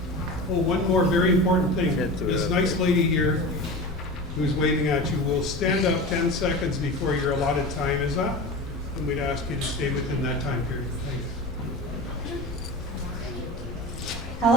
Oh, one more very important thing. This nice lady here who's waving at you will stand up 10 seconds before your allotted time is up, and we'd ask you to stay within that time period. Thank you.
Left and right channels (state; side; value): noise; left; rumble, 11 dB below the sound